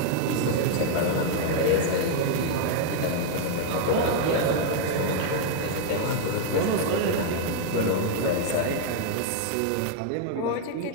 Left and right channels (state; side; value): different; both; correlation 0.00